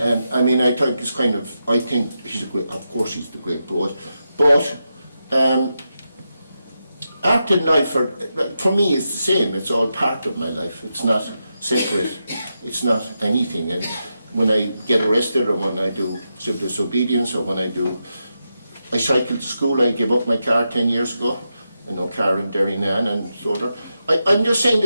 mean, I think it's kind of, I think he's a great, of course he's the great poet, but art and life, for me, is the same. It's all part of my life. It's not separate. It's not anything. And when I get arrested, or when I do civil disobedience, or when I cycle to school, I gave up my car 10 years ago. I know car in Derrynane and so on. I'm just saying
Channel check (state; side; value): inverted; both; correlation -0.87